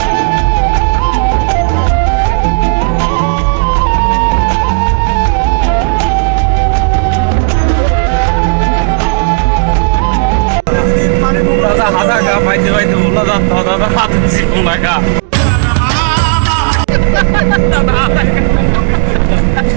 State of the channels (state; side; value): silent; left; digital silence